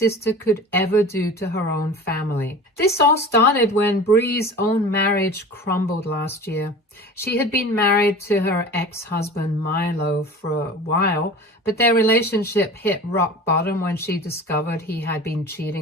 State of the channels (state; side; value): normal; both; correlation 0.37